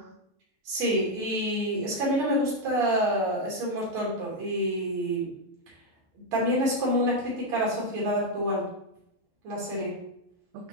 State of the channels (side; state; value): both; normal; correlation 0.02